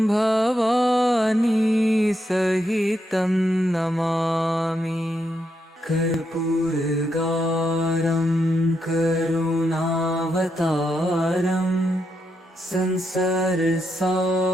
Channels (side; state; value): both; normal; correlation 0.82